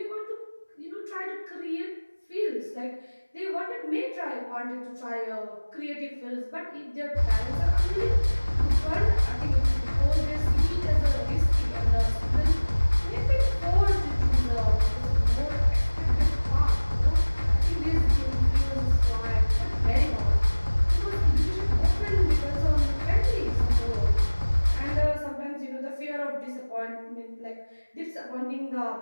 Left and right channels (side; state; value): both; inverted; correlation -1.00